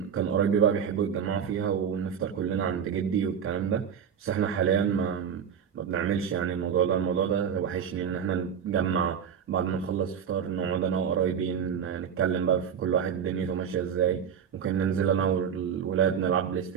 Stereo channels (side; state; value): left; quieter; 7.8 dB